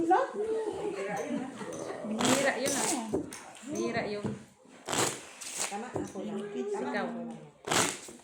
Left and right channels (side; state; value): both; identical; correlation 1.00